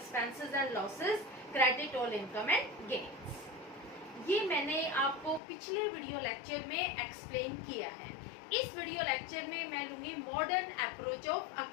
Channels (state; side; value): drops out; right; at 5.4 s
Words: and losses, credit all income and gains. ये मैंने आपको पिछले वीडियो लेक्चर में एक्सप्लेन किया है। इस वीडियो लेक्चर में मैं लूंगी मॉडर्न अप्रोच ऑफ